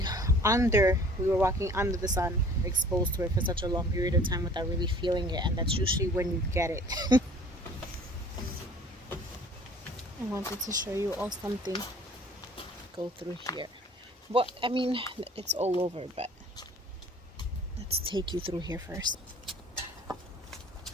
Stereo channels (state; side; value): normal; both; correlation 0.50